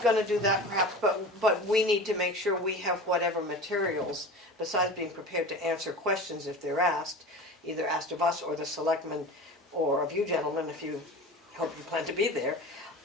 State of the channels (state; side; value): normal; both; correlation 0.34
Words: gonna do that perhaps, but we need to make sure we have whatever materials, besides being prepared to answer questions if they're asked, either asked of us or the selectmen, or of you gentlemen, if you hope you plan to be there.